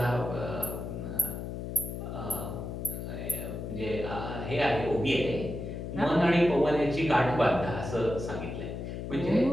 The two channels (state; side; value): noise; left; hum, 6 dB below the sound